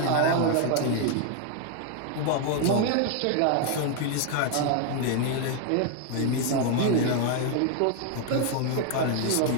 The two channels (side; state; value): both; different; correlation 0.00